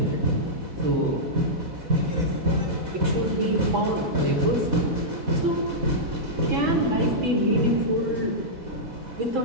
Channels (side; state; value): left; late; 4.1 ms